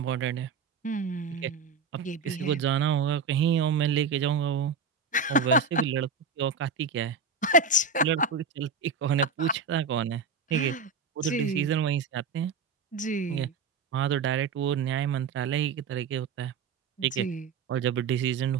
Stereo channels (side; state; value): left; quieter; 5.0 dB